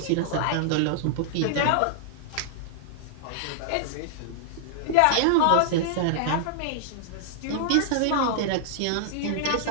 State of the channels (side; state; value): both; different; correlation -0.01